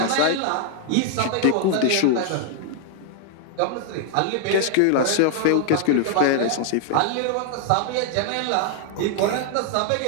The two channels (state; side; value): different; both; correlation 0.00